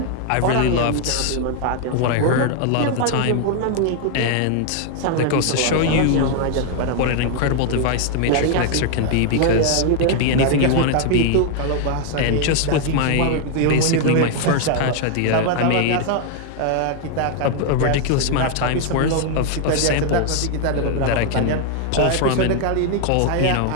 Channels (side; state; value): both; different; correlation 0.00